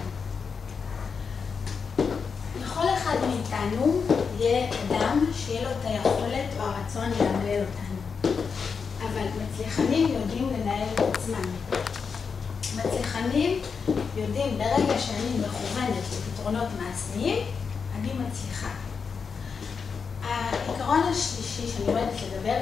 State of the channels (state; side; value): quieter; right; 5.7 dB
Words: לכל אחד מאיתנו יהיה אדם שיהיה לו את היכולת או הרצון לאמלל אותנו. אבל מצליחנים יודעים לנהל את עצמם. מצליחנים יודעים ברגע שאני מכוונת לפתרונות מעשיים, אני מצליחה. העיקרון השלישי שאני אוהבת לדבר